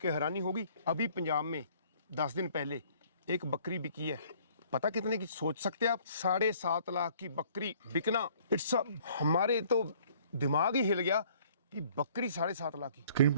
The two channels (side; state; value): both; inverted; correlation -0.57